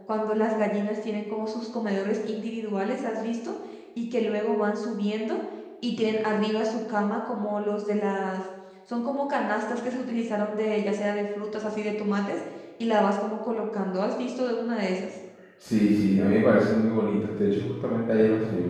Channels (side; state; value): both; identical; correlation 1.00